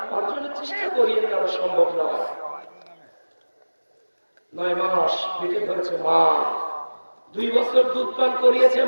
অর্জনের চেষ্টা করিয়ে নেওয়া সম্ভব নয়। 9 মাস পেটে ধরেছে মা, 2 বছর দুধ পান করিয়েছে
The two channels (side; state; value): both; inverted; correlation -1.00